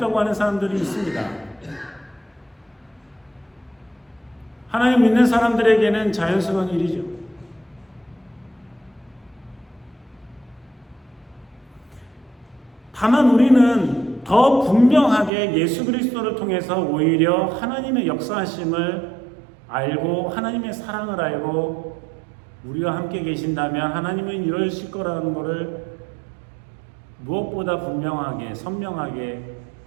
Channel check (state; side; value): drops out; left; at 15.3 s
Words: 하는 사람들이 있습니다. 하나님 믿는 사람들에게는 자연스러운 일이죠. 다만 우리는 더 분명하게 예수 그리스도를 통해서 오히려 하나님의 역사하심을 알고 하나님의 사랑을 알고 우리와 함께 계신다면 하나님은 이러실 거라는 것을 무엇보다 분명하게 선명하게